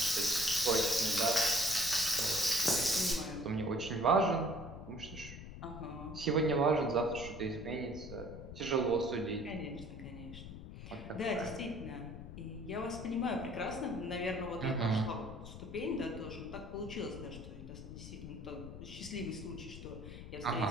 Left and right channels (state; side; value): noise; left; rumble, 11 dB below the sound